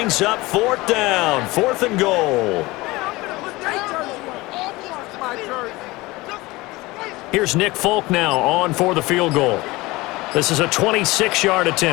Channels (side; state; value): right; quieter; 21.1 dB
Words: up fourth down, fourth and goal. Here's Nick Folk now on for the field goal. This is a 26-yard